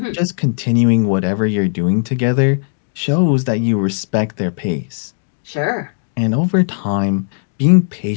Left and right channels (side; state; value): right; silent; digital silence